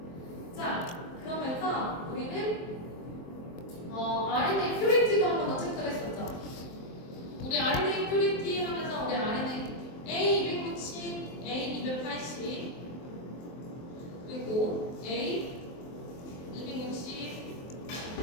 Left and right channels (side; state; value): right; late; 23 ms